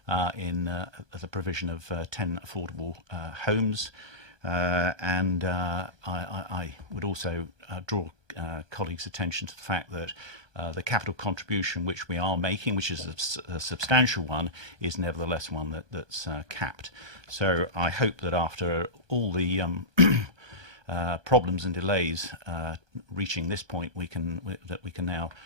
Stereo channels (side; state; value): left; late; 1.2 ms